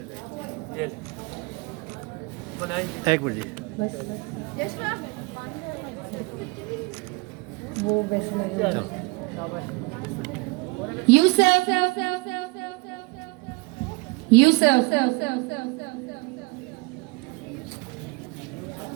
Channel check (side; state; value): left; quieter; 27.3 dB